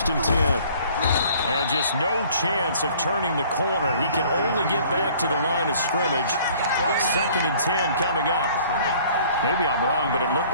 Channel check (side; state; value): both; inverted; correlation -0.54